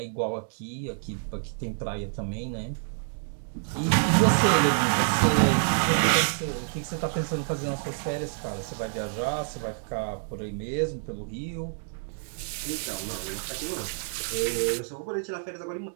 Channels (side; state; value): left; silent; digital silence